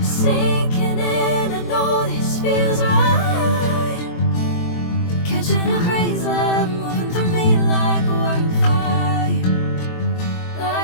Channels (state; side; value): late; right; 23 ms